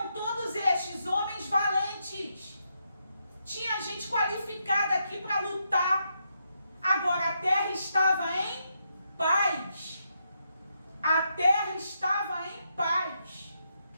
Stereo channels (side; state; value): both; inverted; correlation -0.80